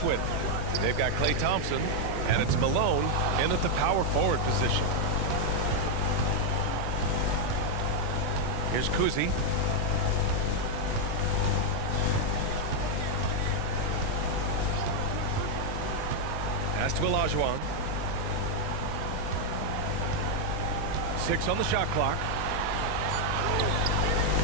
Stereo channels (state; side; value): different; both; correlation -0.01